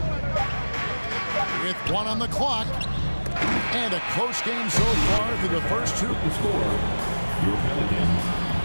With 1 on the clock. And a close game so far through the first 2. The score, your Pelicans,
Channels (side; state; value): both; inverted; correlation -1.00